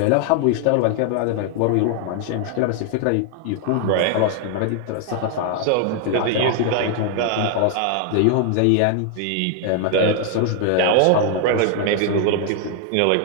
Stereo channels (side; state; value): both; different; correlation 0.00